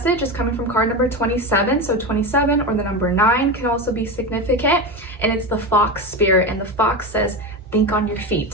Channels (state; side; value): normal; both; correlation 0.20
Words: is coming from card number 27. So 27 or the number 9 can also be significant, and it's the fox spirit. And the fox says, think on your